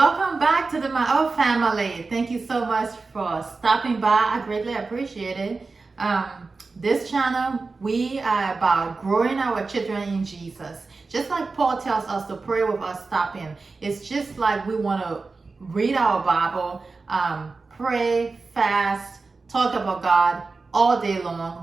back to the My Old Family. Thank you so much for stopping by. I greatly appreciate it. Um, this channel, we are about growing our children in Jesus. Just like Paul tells us to pray with us stopping. It's just like we want to read our Bible, pray, fast, talk about God all day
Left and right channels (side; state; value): left; quieter; 4.0 dB